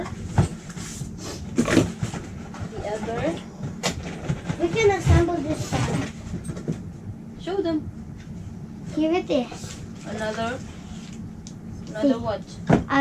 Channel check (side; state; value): both; identical; correlation 1.00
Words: the other. We can assemble this side. Show them. Here it is. Another what?